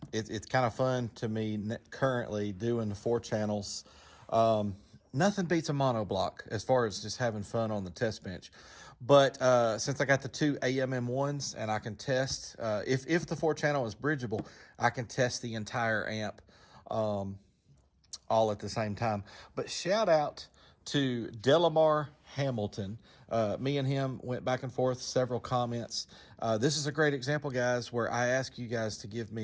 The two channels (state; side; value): identical; both; correlation 1.00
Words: It's kind of fun to me currently doing the 4 channels. Nothing beats a monoblock as far as just having fun on the test bench. But since I got the 2 AMM1s and I can test, if the 4-channel is bridgeable, I can test the entire amp all at the same time. But shout out to Delamar Hamilton. Me and him went back and forth, several comments. This is a great example, guys, where I ask you guys to give